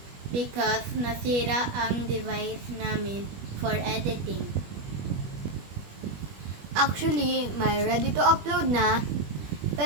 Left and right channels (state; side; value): late; left; 21 ms